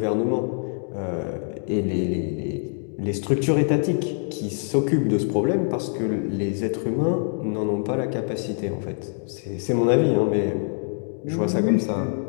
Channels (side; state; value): right; silent; 58 dB below the other